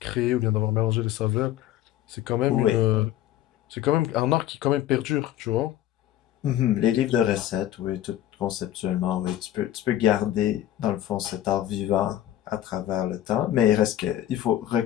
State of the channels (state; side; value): quieter; right; 12.7 dB